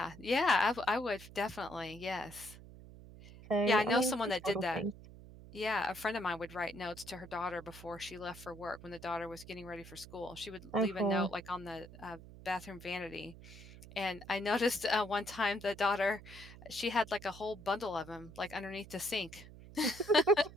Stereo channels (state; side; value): noise; right; hum, 17 dB below the sound